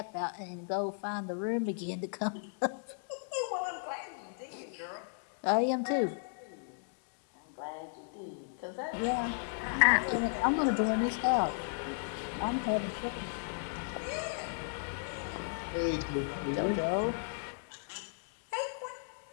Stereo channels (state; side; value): silent; right; digital silence